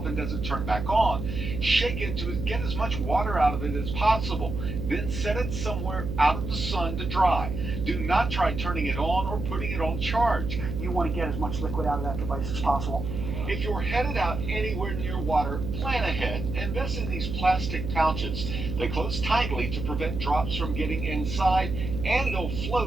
and doesn't turn back on, shake it to get as much water out of it as possible. Then set it somewhere out of the sun to dry. Do not try turning it on or putting it on charge. You want to get as much liquid out of that device as possible. If you're headed out anywhere near water, plan ahead. Invest in these plastic pouches. They close tightly to prevent drops from getting inside, and they'll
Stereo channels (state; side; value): noise; right; hum, 5 dB below the sound